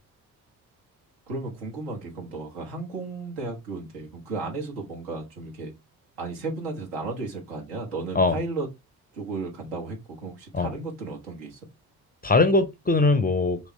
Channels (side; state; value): both; normal; correlation 0.24